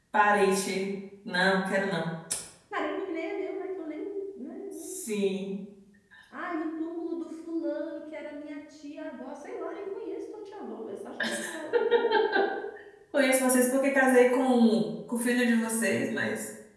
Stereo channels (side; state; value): both; identical; correlation 1.00